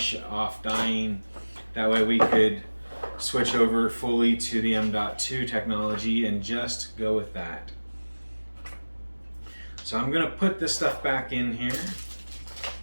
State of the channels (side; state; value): both; inverted; correlation -1.00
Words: off dying. That way we could switch over fully to the M.2 technology and just go with that. So I'm going to put this stuff back in here.